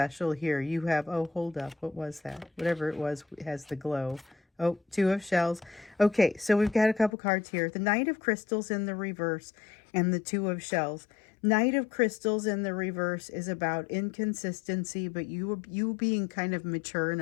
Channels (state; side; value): drops out; right; at 7.1 s